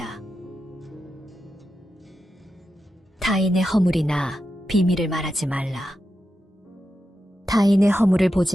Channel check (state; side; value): normal; both; correlation 0.89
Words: 타인의 허물이나 비밀을 말하지 말라. 타인의 허물을